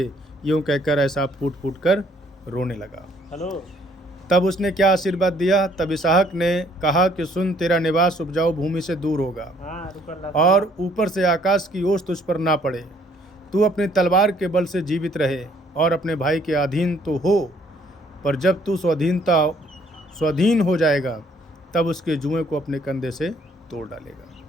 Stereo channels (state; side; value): normal; both; correlation 0.63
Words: यूँ कहकर एसाव फूट कर रोने लगा। तब उसने क्या आशीर्वाद दिया? तब इसहाक ने कहा कि सुन, तेरा निवास उपजाऊ भूमि से दूर होगा और ऊपर से आकाश की ओस तुझ पर ना पड़े। तू अपनी तलवार के बल से जीवित रहे और अपने भाई के अधीन तो हो, पर जब तू स्वाधीन हो जाएगा, तब उसके जुएं को अपने कंधे से तोड़ डालेगा।